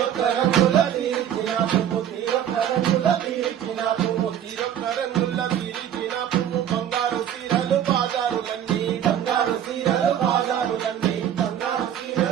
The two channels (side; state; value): left; quieter; 10.0 dB